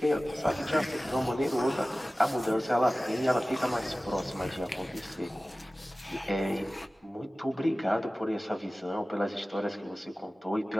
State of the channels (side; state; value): both; normal; correlation 0.97